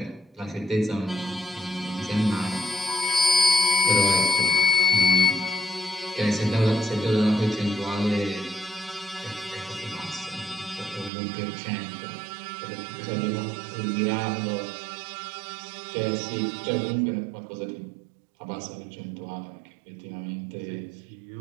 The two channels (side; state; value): left; drops out; at 11.1 s